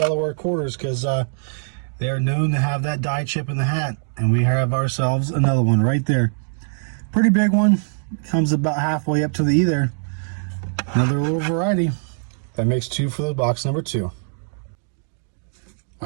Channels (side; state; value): left; silent; digital silence